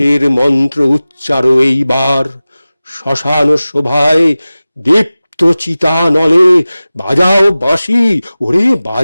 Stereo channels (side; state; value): both; inverted; correlation -0.97